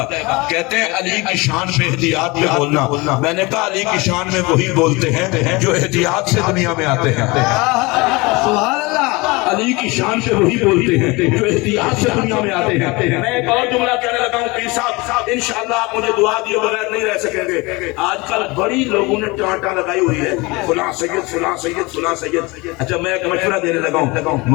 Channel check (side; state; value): right; quieter; 24.6 dB